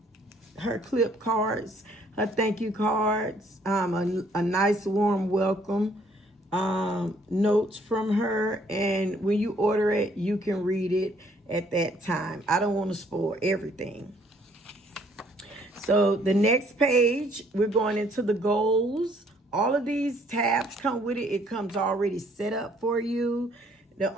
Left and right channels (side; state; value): both; normal; correlation 0.63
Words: her clip cards, her thank you cards, a nice warm welcome, notes from her. And when you order it, you can read it at that time. I don't want to spoil everything. So the next page, we're going into the goals. All of these tabs come with it. It comes already set up for you. The